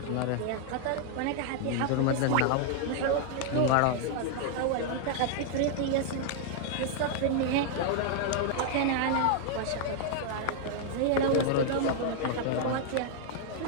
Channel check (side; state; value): both; different; correlation 0.00